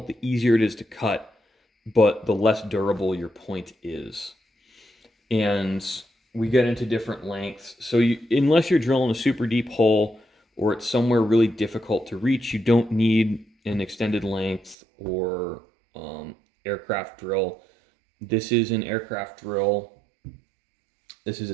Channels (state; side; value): drops out; left; at 14.8 s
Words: the easier it is to cut, but the less durable your point is. And we get into different lengths. So unless you're drilling a super deep hole or it's somewhere really difficult to reach, you don't need an extended length or aircraft drill. This is an aircraft drill. This is